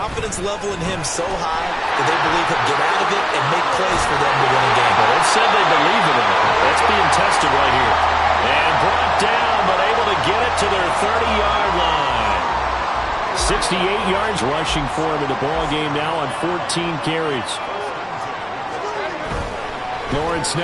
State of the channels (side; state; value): both; identical; correlation 1.00